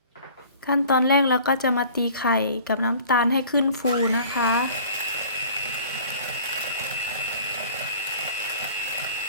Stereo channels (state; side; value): inverted; both; correlation -0.48